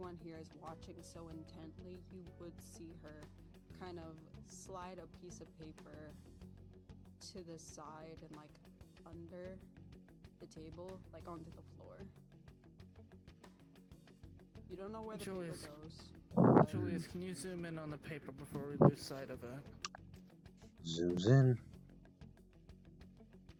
here is watching so intently, you would see her kind of slide a piece of paper to the side and like under the table, like onto the floor. You don't know where the Julius. paper goes. Julius, can you zoom in on the paper before we lose sight of it? Zooms in.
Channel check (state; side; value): identical; both; correlation 1.00